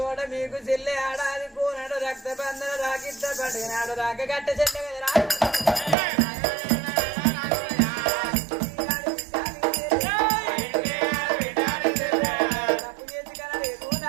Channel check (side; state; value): left; drops out; at 6.0 s